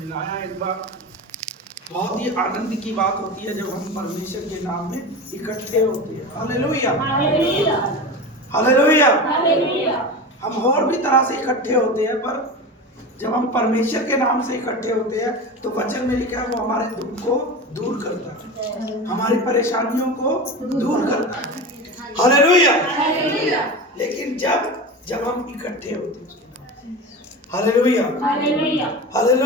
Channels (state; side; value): normal; both; correlation 0.27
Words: एक बार। बहुत ही आनंद की बात होती है जब हम परमेश्वर के नाम में इकट्ठे होते हैं। Hallelujah, hallelujah. हम और भी तरह से इकट्ठे होते हैं, पर जब हम परमेश्वर के नाम से इकट्ठे होते हैं तो वचन में लिखा है वो हमारे दुख को दूर करता है, हमारी परेशानियों को दूर करता है। हालेलुया। लेकिन जब हम इकट्ठे होते हैं, हालेलुया,